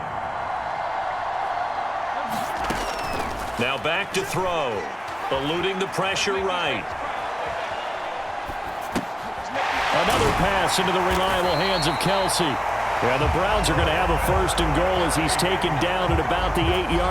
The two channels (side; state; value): both; identical; correlation 1.00